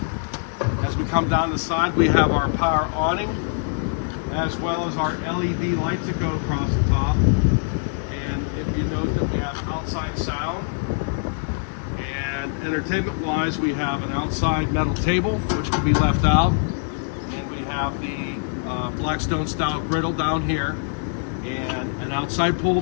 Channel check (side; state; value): right; silent; digital silence